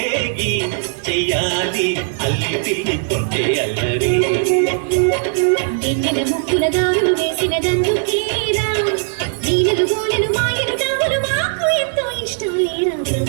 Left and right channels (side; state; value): left; silent; digital silence